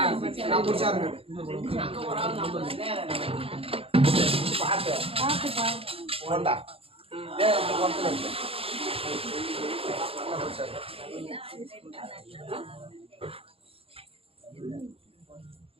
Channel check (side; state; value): left; late; 0.27 ms